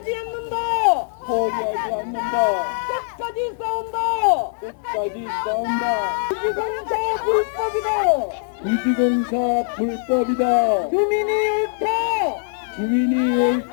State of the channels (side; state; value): right; silent; digital silence